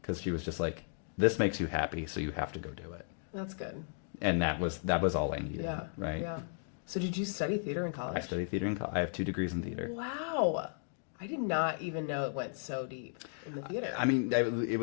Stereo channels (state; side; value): silent; right; digital silence